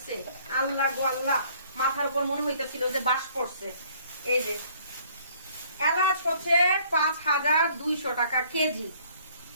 আল্লাহ গো আল্লাহ, মাথার উপর মনে হইতেছিল যে বাস পড়ছে। এই যে এলাচ হচ্ছে 5200 টাকা কেজি।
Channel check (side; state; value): both; inverted; correlation -0.59